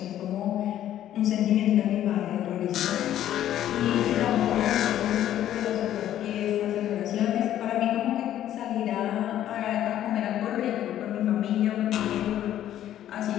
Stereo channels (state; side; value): quieter; right; 11.8 dB